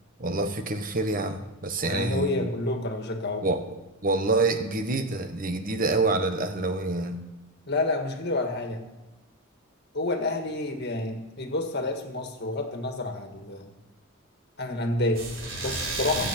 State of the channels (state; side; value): normal; both; correlation 0.12